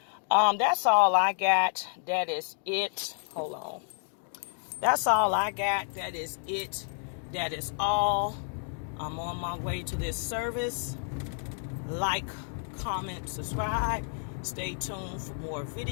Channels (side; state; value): right; silent; 58 dB below the other